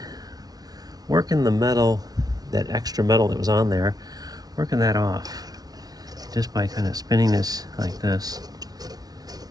working the metal, that extra metal that was on there, working that off just by kind of spinning this like this.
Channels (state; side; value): late; left; 0.19 ms